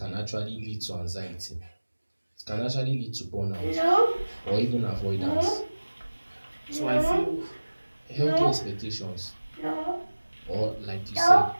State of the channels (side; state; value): both; inverted; correlation -1.00